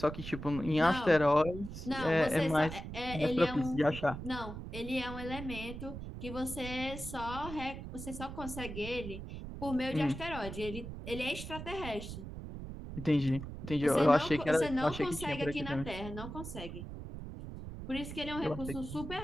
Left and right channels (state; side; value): noise; right; rumble, 9 dB below the sound